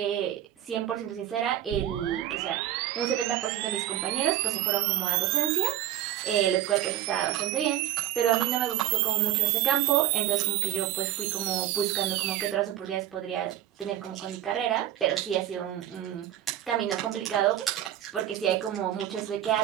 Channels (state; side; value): quieter; left; 12.1 dB